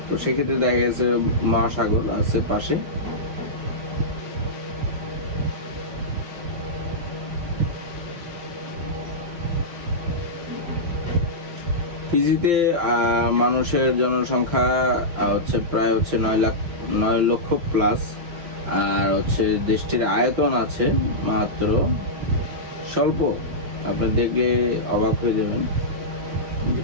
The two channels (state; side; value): late; left; 5.9 ms